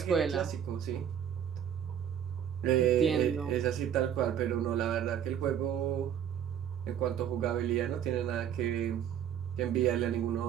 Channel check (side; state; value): left; quieter; 9.4 dB